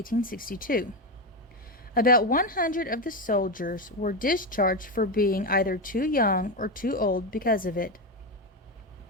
About 100 of the soldiers were discharged for being either too young or too old because of it.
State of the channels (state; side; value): normal; both; correlation 0.12